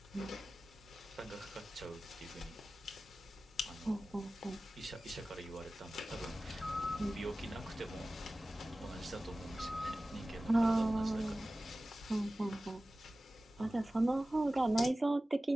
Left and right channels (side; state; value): both; normal; correlation 0.96